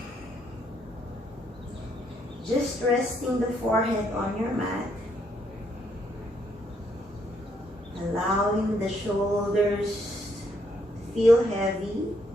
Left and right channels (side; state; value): both; normal; correlation 0.72